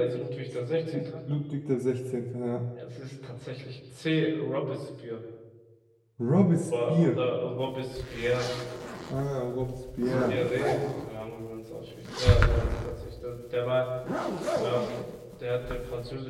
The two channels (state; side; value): identical; both; correlation 1.00